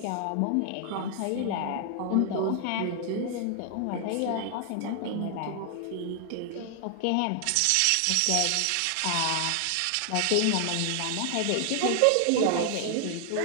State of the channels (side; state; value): both; different; correlation 0.00